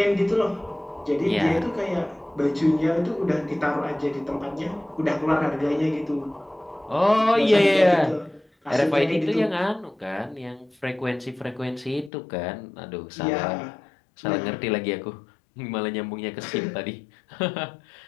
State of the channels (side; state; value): right; drops out; at 12.1 s